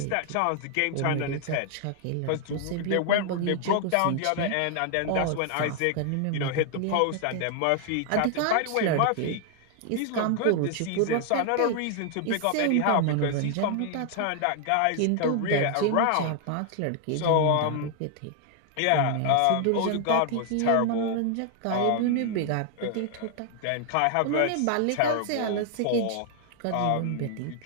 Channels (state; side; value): different; both; correlation 0.00